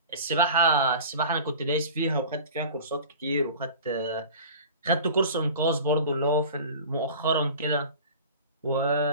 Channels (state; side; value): inverted; both; correlation -0.39